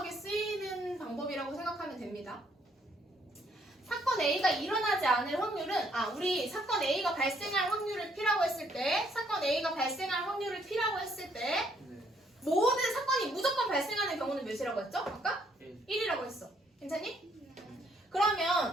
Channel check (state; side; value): normal; both; correlation 0.69